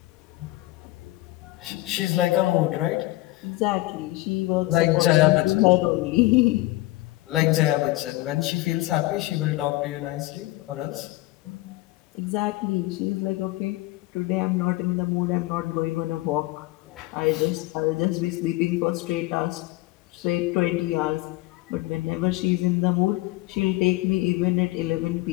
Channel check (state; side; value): quieter; right; 18.8 dB